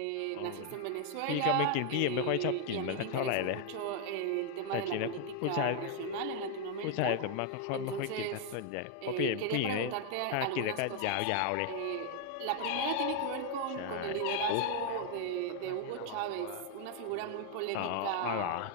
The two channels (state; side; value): different; both; correlation 0.01